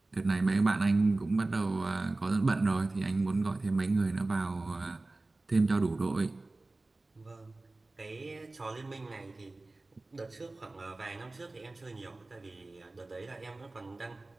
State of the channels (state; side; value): quieter; left; 3.1 dB